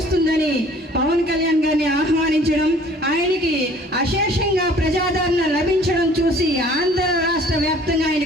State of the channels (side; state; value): both; normal; correlation 0.53